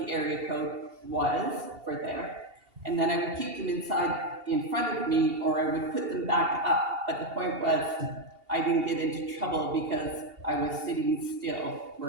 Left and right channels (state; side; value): late; left; 2.7 ms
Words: area code was for there. And then I would keep them in front of me, or I would put them back up but the point was, I didn't get into trouble because I was sitting still